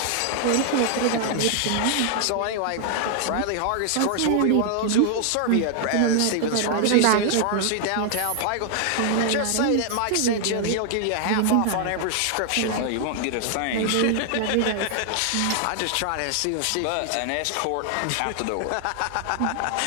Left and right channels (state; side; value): different; both; correlation 0.00